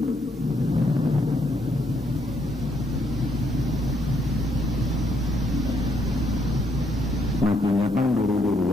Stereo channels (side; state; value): both; normal; correlation 0.73